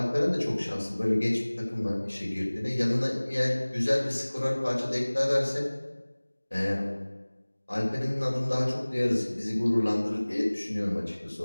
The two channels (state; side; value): inverted; both; correlation -1.00